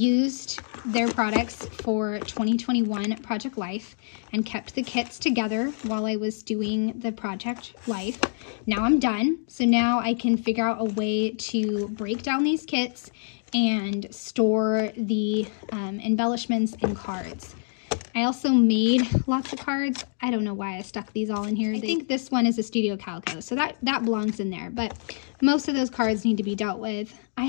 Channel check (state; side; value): silent; right; digital silence